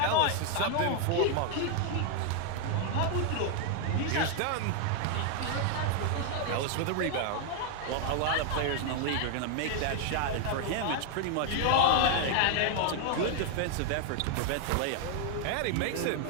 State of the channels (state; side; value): different; both; correlation 0.00